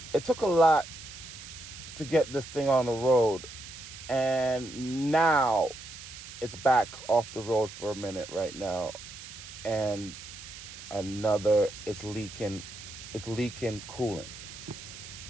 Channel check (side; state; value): right; noise; hiss, 14 dB below the sound